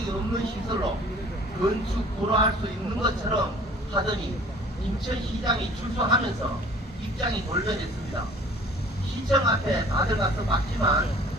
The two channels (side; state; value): both; normal; correlation 0.49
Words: 없는 시설로 건축 불허할 수 있는 것처럼 하더니 김천시장이 출소하면서 입장이 돌변했습니다. 시청 앞에 다들 가서 봤지만